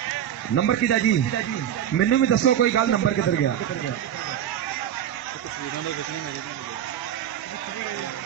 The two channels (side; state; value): left; quieter; 10.3 dB